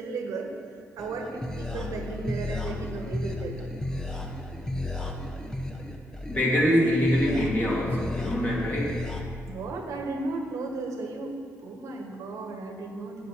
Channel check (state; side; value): normal; both; correlation 0.78